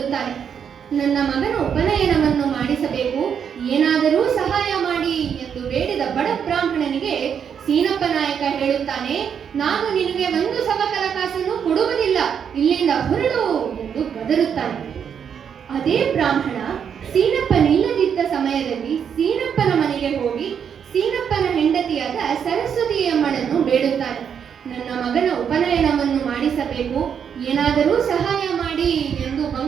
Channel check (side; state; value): left; quieter; 7.7 dB